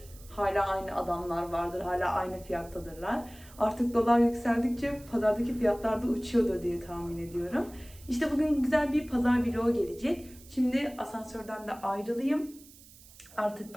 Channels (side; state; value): right; noise; hiss, 22 dB below the sound